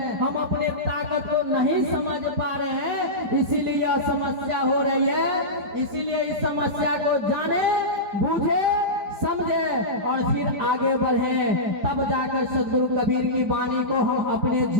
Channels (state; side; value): late; left; 5.3 ms